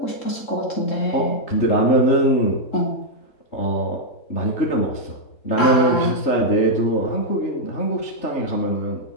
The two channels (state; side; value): late; right; 3.7 ms